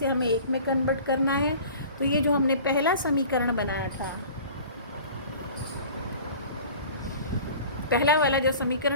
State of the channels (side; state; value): both; inverted; correlation -0.44